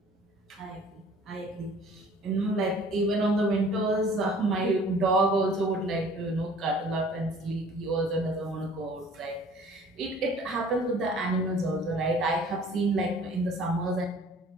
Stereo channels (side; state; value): both; normal; correlation 0.51